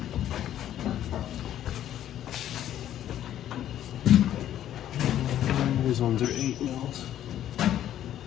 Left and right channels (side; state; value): right; quieter; 11.5 dB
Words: These ones are 8 mils.